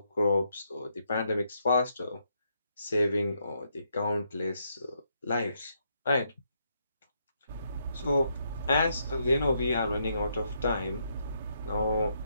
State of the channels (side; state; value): both; inverted; correlation -0.77